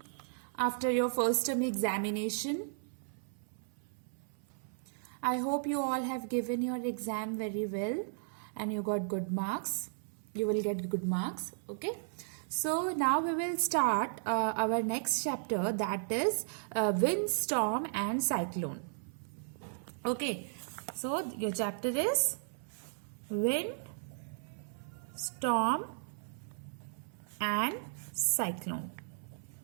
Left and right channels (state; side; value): silent; left; 54 dB below the other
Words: after your first term examination. I hope you all have given your exam very well and you got good marks. You will get good marks. Okay. So now we will start our next chapter, that is wind, storm and cyclone. Okay. So your chapter is wind, storm and cyclone.